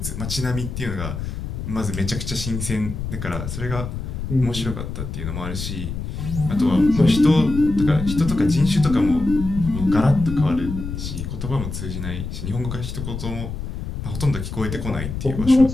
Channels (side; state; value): left; noise; rumble, 6 dB below the sound